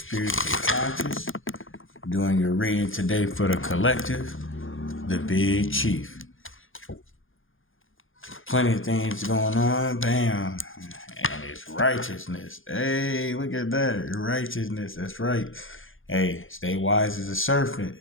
conscious. Doing your reading today for the collective, the Big Chief. Plenty of things going on, bam. And it's righteousness. Hey, look at that. Righteousness, that's right. Hey, stay wise as a serpent.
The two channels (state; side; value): late; right; 0.59 ms